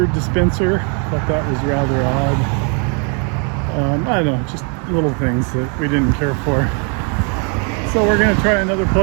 dispenser. Thought that was rather odd. I don't know, just little things that we didn't care for. So we're going to try another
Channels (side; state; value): left; quieter; 37.7 dB